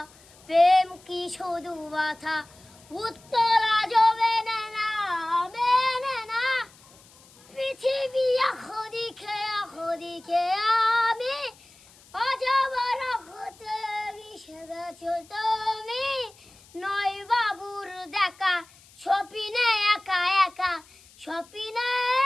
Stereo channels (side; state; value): left; noise; hiss, 26 dB below the sound